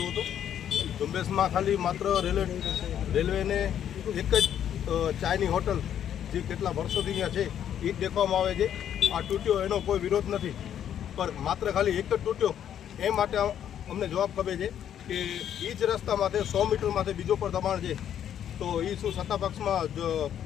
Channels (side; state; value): right; quieter; 9.8 dB